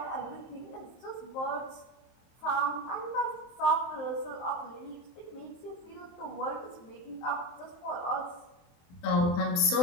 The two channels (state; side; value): late; right; 24 ms